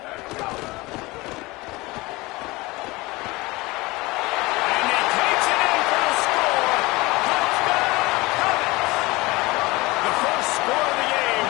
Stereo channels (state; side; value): quieter; right; 22.2 dB